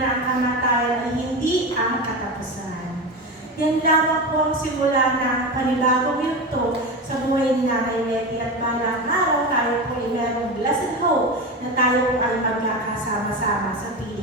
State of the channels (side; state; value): both; normal; correlation 0.22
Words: na ang kamatayan ay hindi ang katapusan. Yan lamang po ang simula ng panibagong yugto sa buhay ni Nanay Letty at balang araw tayo po ay merong blessed hope na tayo ay magkakasama-sama sa